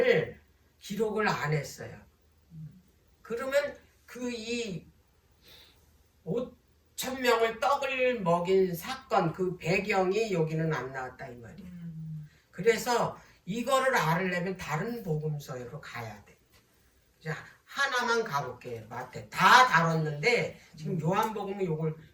기록을 안 했어요. 그러면 그 이 5,000명을 떡을 먹인 사건 그 배경이 여기는 안 나왔다 이 말이에요. 그래서 이거를 알으려면 다른 복음서로 가야 돼. 자, 하나만 가볼게요. 마태. 다 다뤘는데 지금 요한복음은 이걸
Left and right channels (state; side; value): identical; both; correlation 1.00